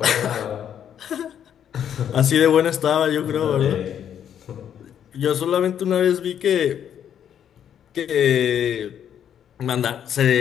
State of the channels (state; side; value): quieter; right; 9.3 dB